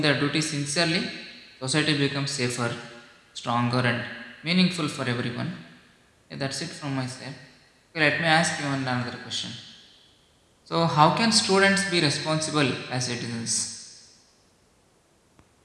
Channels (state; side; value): identical; both; correlation 1.00